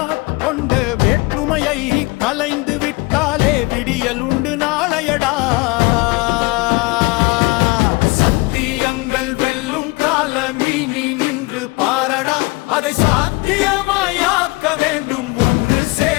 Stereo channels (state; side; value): quieter; right; 24.3 dB